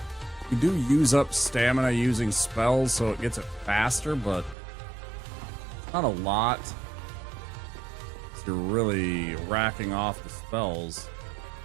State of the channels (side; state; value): left; drops out; at 4.5 s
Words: You do use up stamina using spells, so it gets it faster, but not a lot. So you're really racking off the spells.